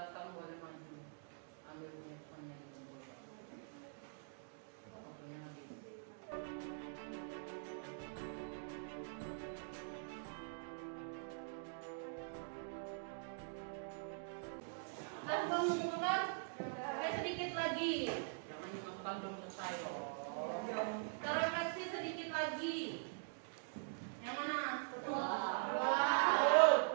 boleh maju, ambil handphone-nya di bawah. Waktunya habis. Sudah mengumpulkan? Oke, sedikit lagi. Jangan dimakan belum selesai. Terefleksi sedikit lagi. Yang mana? Dua.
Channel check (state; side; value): silent; left; digital silence